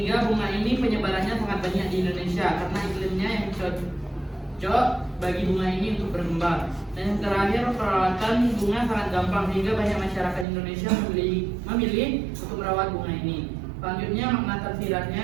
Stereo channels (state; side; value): drops out; left; at 10.5 s